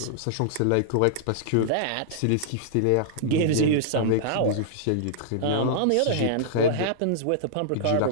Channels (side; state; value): both; different; correlation -0.01